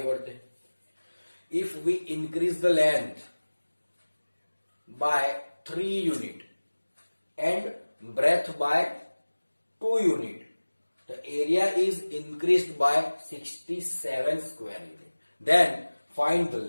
बढ़ते हैं। If we increase the length by 3 unit and breadth by 2 unit, the area is increased by 67 square unit. Then find the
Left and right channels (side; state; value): both; inverted; correlation -1.00